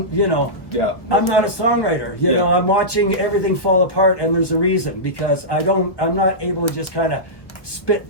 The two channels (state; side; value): late; right; 1.0 ms